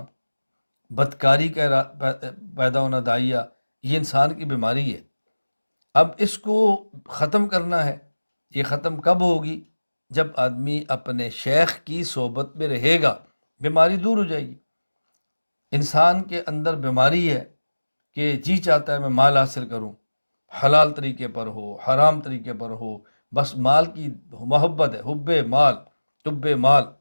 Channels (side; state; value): both; inverted; correlation -1.00